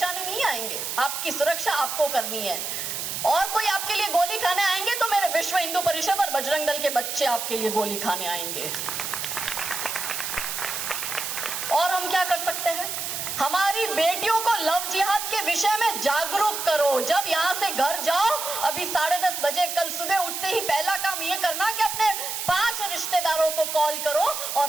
नहीं आएंगे, आपकी सुरक्षा आपको करनी है। और कोई आपके लिए गोली खाने आएंगे तो मेरे विश्व हिंदू परिषद और बजरंग दल के बच्चे आपके लिए गोली खाने आएंगे। और हम क्या कर सकते हैं? हमारी बेटियों को लव जिहाद के विषय में जागरूक करो। जब यहाँ से घर जाओ, अभी 10:30 बजे कल सुबह उठते ही पहला काम ये करना कि अपने 5 रिश्तेदारों को कॉल करो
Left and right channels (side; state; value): right; noise; hiss, 4 dB below the sound